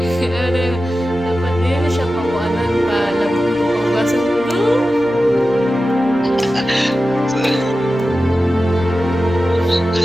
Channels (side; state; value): both; normal; correlation 0.94